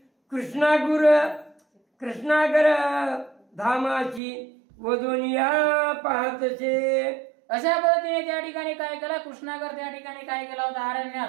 कृष्णागर धामाची वदोनिया पाहतसे. अशा पद्धतीने त्या ठिकाणी काय केलं कृष्णागर त्या ठिकाणी काय केला होता अरण्यात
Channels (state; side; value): drops out; left; at 4.2 s